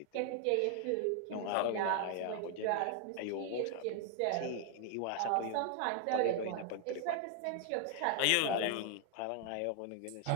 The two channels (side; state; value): both; different; correlation 0.00